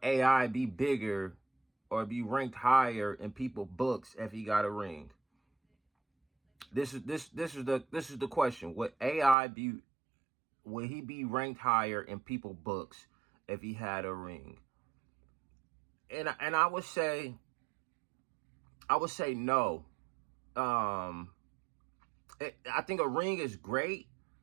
AI be bigger or be ranked higher in people's books if he got a ring? This is the question. Will he be ranked higher in people's books if he had a ring? And I would say no. I think a ring is great.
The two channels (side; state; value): left; drops out; at 9.3 s